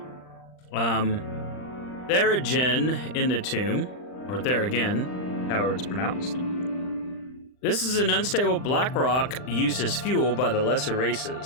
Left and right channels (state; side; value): late; right; 39 ms